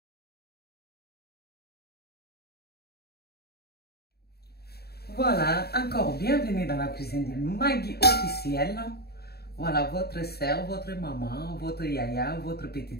Voilà, encore bienvenue dans la cuisine de Maggie officielle. Voilà, votre sœur, votre maman, votre yaya, votre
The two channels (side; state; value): right; late; 0.46 ms